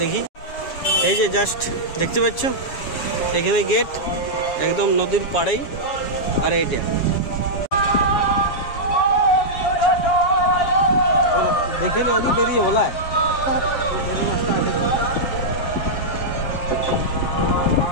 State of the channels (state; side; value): late; right; 7.2 ms